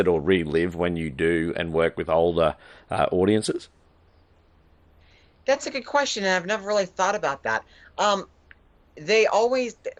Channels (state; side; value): identical; both; correlation 1.00